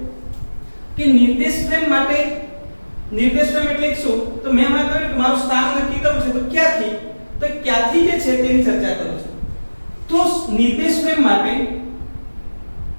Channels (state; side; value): inverted; both; correlation -1.00